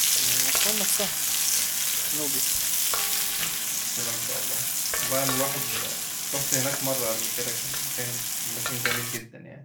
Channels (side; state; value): both; identical; correlation 1.00